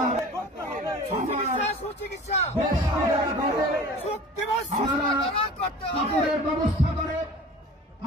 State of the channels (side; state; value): both; normal; correlation 0.41